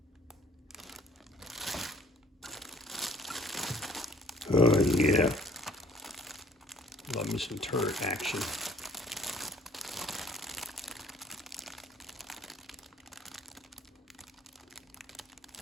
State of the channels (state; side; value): normal; both; correlation 0.57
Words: Oh yeah. Love me some turret action.